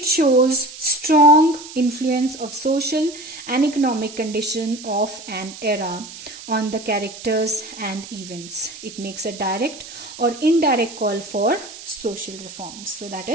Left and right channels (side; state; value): right; noise; hiss, 14 dB below the sound